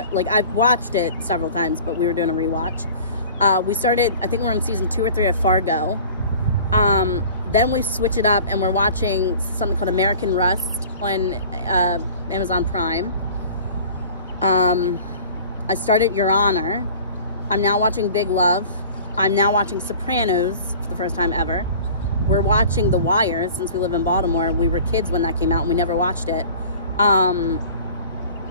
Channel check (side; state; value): both; inverted; correlation -0.44